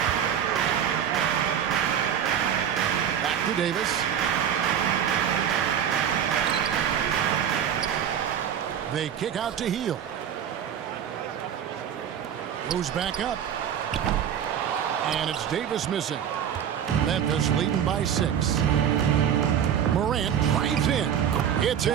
Back to Davis. They kick out to Hield. Moves back up. And it's Davis missing. Memphis leading by 6. Morant drives in. It's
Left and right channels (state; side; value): quieter; left; 8.9 dB